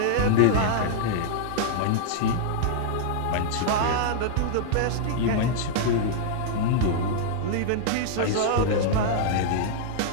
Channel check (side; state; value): both; different; correlation -0.01